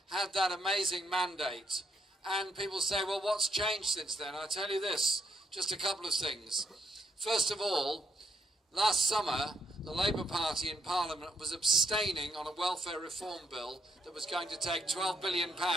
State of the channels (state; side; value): normal; both; correlation 0.73